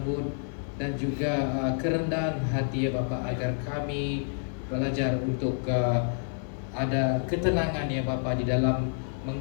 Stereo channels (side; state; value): right; silent; digital silence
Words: dan juga kerendahan hati ya Bapak, agar kami belajar untuk ada ketenangan ya Bapak di dalam